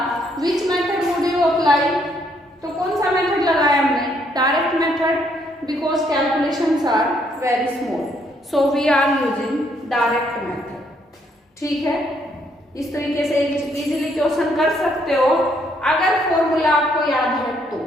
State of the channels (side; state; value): both; normal; correlation 0.70